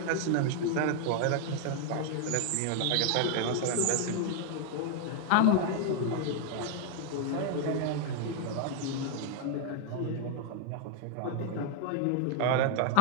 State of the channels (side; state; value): both; different; correlation 0.00